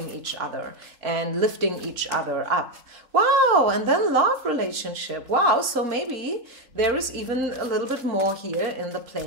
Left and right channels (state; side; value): late; left; 4.2 ms